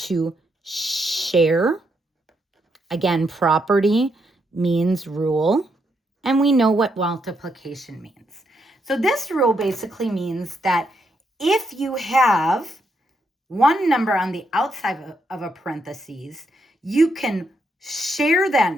share. Again, property means rule, and we know what multiplication means. So this rule basically means that if you have one number on the outside of a parentheses, you can share that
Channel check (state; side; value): normal; both; correlation 0.78